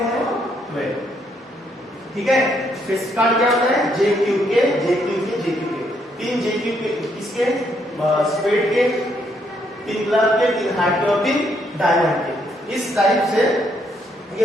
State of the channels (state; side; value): normal; both; correlation 0.73